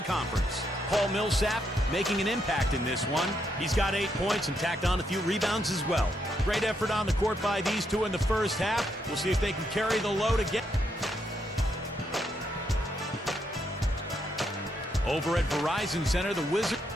conference. Paul Millsap making an impact in this one. He's got 8 points and tacked on a few rebounds as well. Great effort on the court by these two in the first half. We'll see if they can carry the load again. Over at Verizon Center, the Wizards.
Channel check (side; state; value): both; normal; correlation 0.78